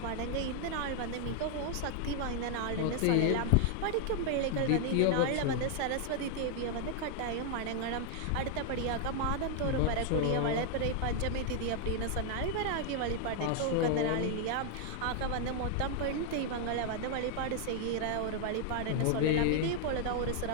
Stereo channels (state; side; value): different; both; correlation 0.00